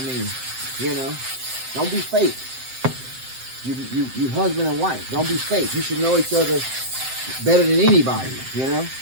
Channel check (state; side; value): late; left; 7.7 ms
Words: mean, you know, don't be fake. You husband and wife. Don't be fake. You should know each other better than anybody, you know?